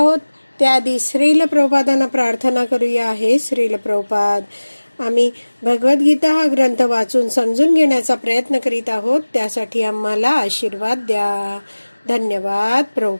त्याआधी श्रील प्रभुपादांना प्रार्थना करूया. हे श्रील प्रभुपाद, आम्ही भगवद्गीता हा ग्रंथ वाचून समजून घेण्याचा प्रयत्न करीत आहोत. त्यासाठी आम्हाला आशीर्वाद द्या. धन्यवाद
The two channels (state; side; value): inverted; both; correlation -1.00